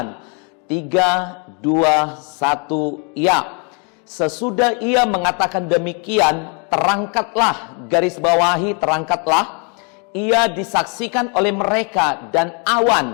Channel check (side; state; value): right; quieter; 36.3 dB